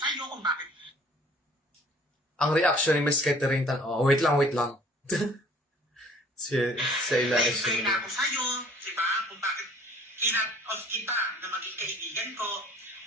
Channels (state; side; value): normal; both; correlation 0.53